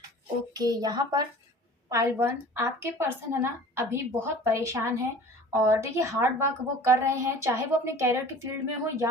ओके, यहाँ पर पाइल 1 आपके पर्सन है ना अभी बहुत परेशान है और देखिए हार्ड वर्क वो कर रहे हैं, चाहे वो अपने कैरियर की फील्ड में हो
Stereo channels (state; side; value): normal; both; correlation 0.43